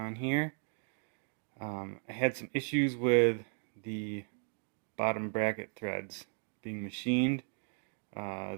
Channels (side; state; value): left; silent; 54 dB below the other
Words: here. I had some issues with the bottom bracket threads being machined. They